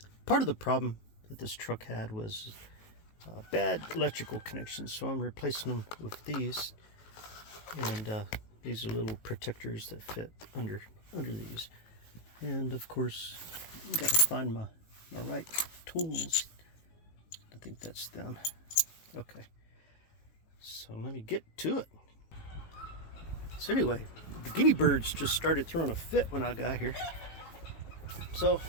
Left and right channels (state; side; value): late; right; 18 ms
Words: part of the problem that this truck had was bad electrical connections, so I'm replacing them with these. And these are little protectors that fit under these. And of course, you gotta find my right tools. I think that's them. Okay, so let me get to it. So anyway, the guinea birds just started throwing a fit when I got here. So